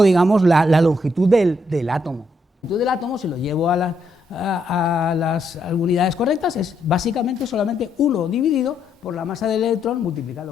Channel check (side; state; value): both; normal; correlation 0.76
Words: digamos, la longitud del átomo. La longitud del átomo, si lo llevo a las unidades correctas, es básicamente solamente 1 dividido por la masa del electrón